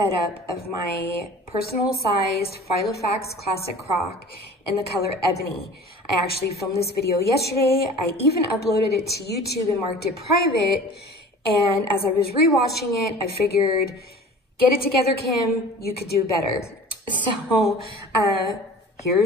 of my personal sized Filofax classic croc in the color Ebony. I actually filmed this video yesterday. I even uploaded it to YouTube and marked it private. And as I was rewatching it, I figured, get it together, Kim, you could do better. So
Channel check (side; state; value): both; normal; correlation 0.42